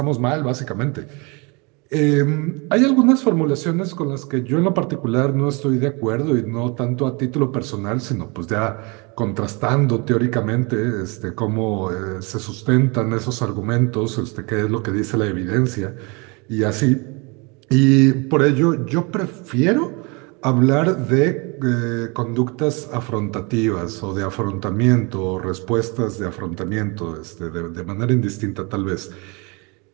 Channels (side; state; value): left; quieter; 29.6 dB